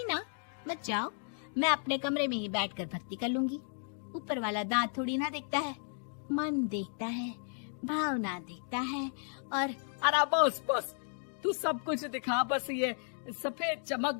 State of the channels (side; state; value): right; silent; 55 dB below the other